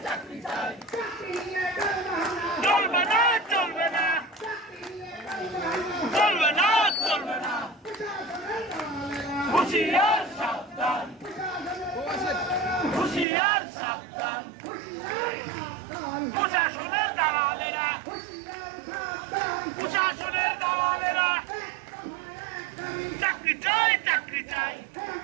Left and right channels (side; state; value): left; drops out; at 13.2 s